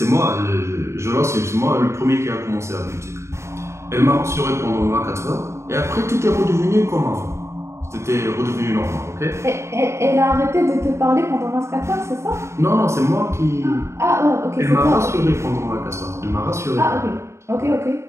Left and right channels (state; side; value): late; left; 0.13 ms